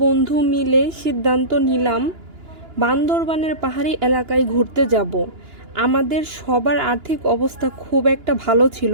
বন্ধু মিলে সিদ্ধান্ত নিলাম বান্দরবানের পাহাড়ি এলাকায় ঘুরতে যাব। আমাদের সবার আর্থিক অবস্থা খুব একটা ভালো ছিল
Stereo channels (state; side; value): late; left; 2.9 ms